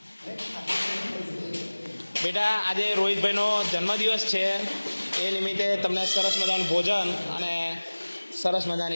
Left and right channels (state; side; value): inverted; both; correlation -1.00